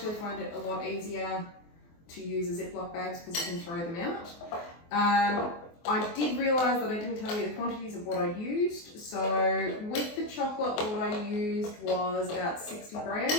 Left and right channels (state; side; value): late; right; 24 ms